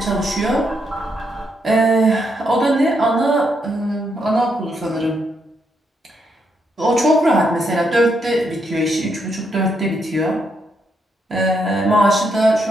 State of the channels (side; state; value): both; normal; correlation 0.78